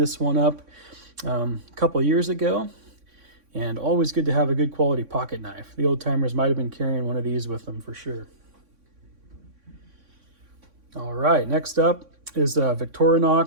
one up a couple years ago, and always good to have a good quality pocket knife. The old timers might have been carrying one of these with them for sure. All right, next up is a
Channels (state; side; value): late; left; 3.6 ms